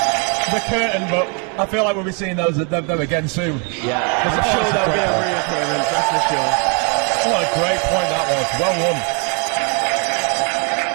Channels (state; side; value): quieter; left; 36.4 dB